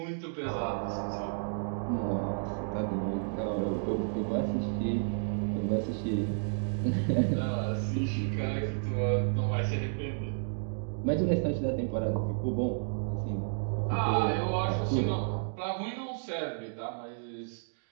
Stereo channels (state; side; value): silent; left; digital silence